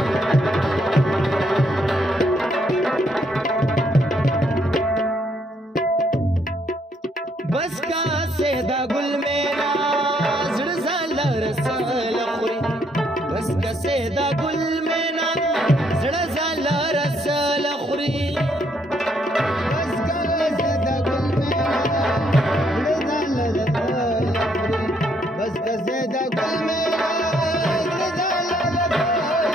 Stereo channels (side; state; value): both; normal; correlation 0.71